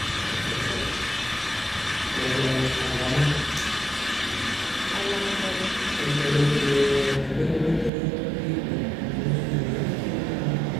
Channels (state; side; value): drops out; left; at 7.9 s